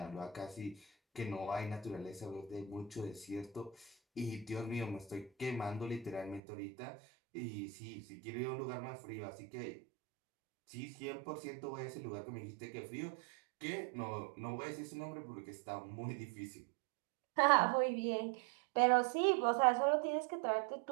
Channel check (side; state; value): left; drops out; at 6.4 s